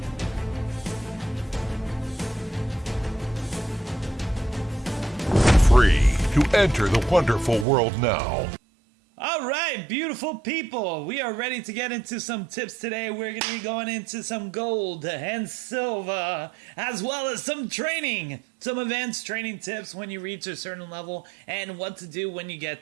Free to enter the wonderful world now. Alright, beautiful people, we are ready to get into some tips today. We're going to be going into some gold and silver, as well as some training. Some advanced training tips when you reach a certain level and what to do when you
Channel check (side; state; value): left; drops out; at 7.7 s